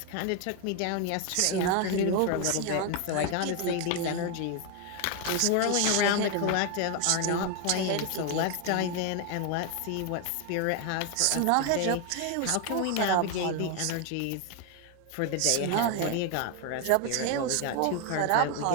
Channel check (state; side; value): different; both; correlation 0.01